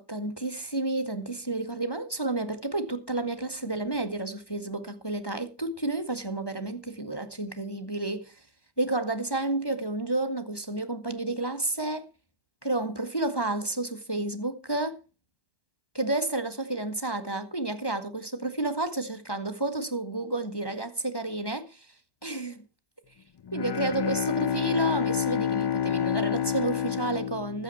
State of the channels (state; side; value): late; right; 1.1 ms